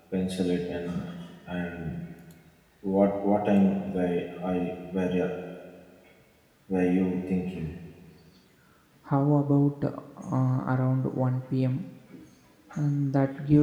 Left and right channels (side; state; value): both; identical; correlation 1.00